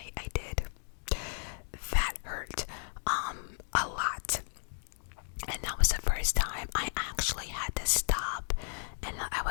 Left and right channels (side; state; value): right; silent; digital silence